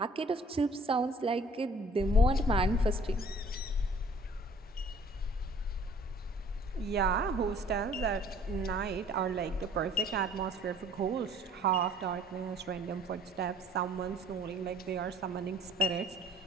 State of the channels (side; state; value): both; normal; correlation 0.54